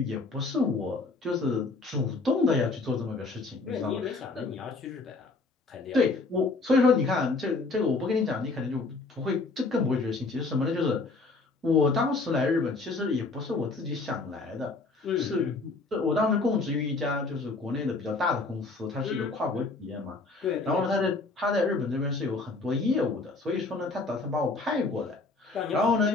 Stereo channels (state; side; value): quieter; right; 3.7 dB